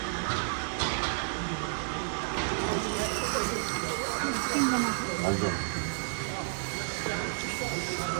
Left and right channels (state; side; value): silent; left; digital silence